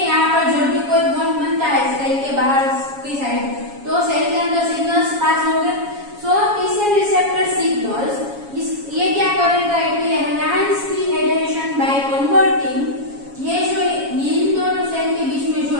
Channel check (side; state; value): left; late; 7.2 ms